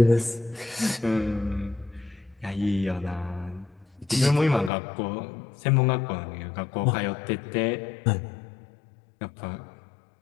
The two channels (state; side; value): drops out; right; at 4.7 s